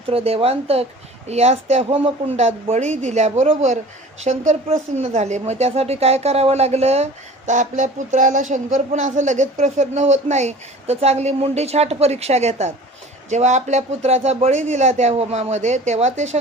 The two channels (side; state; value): both; normal; correlation 0.43